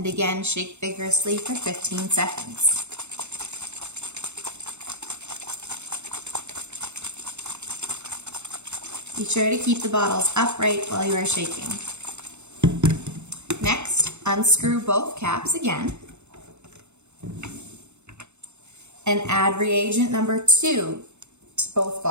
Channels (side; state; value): left; late; 0.82 ms